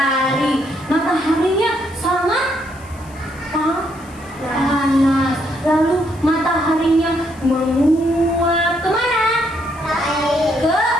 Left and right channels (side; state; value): left; noise; hiss, 25 dB below the sound